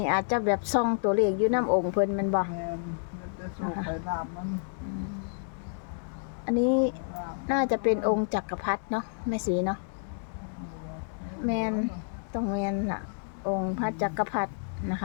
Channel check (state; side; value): silent; right; 58 dB below the other